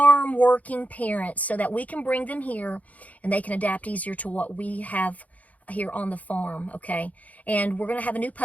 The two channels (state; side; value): late; right; 0.072 ms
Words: working parents, so that we can bring them here and they can adapt easier to what we have here on the farm, okay? And we're going to have a new